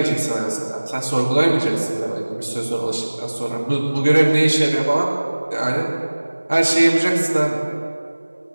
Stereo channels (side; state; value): both; inverted; correlation -1.00